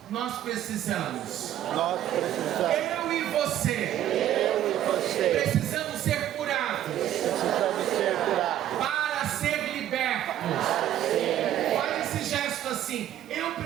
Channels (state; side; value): quieter; left; 12.0 dB